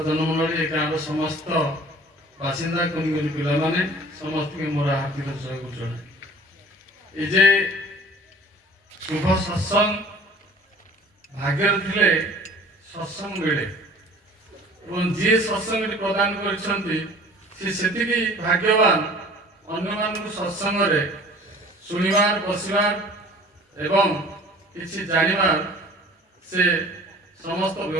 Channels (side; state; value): both; normal; correlation 0.47